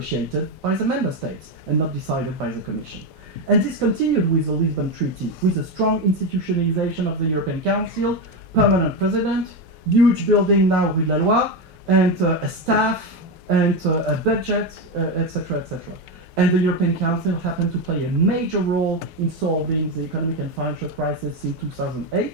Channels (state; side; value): normal; both; correlation 0.12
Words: by the member states and not decided by the Commission. And this continued with the Lisbon Treaty, with a strong institutionalization of the European Council, permanent president, huge building now with La Loi, and a staff, and a budget, etc., etc. And the European Council happened to play a major role in solving the economic and financial crisis in